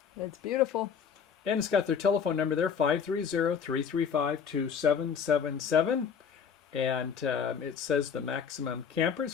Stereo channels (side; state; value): right; quieter; 6.9 dB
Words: It's beautiful. And it's got their telephone number there, 530-335-2777. And it says the maximum campers,